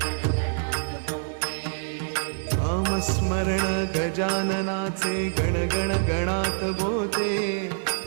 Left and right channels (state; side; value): silent; left; digital silence